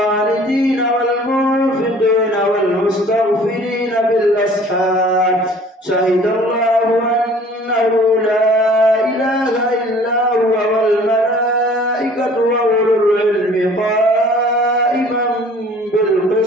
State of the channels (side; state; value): both; normal; correlation 0.51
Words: والمنفقين والمستغفرين بالأسحار شهد الله أنه لا إله إلا هو والملائكة وأولو العلم قائما